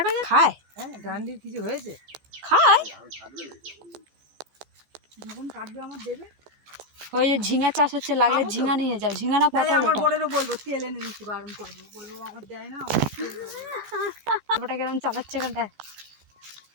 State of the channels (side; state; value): left; late; 14 ms